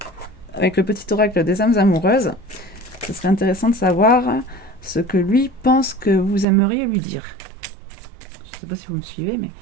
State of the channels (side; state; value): left; drops out; at 6.5 s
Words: Avec le petit oracle des âmes amoureuses, ce serait intéressant de savoir ce que lui pense que vous aimeriez lui dire. Je ne sais pas si vous me suivez, mais...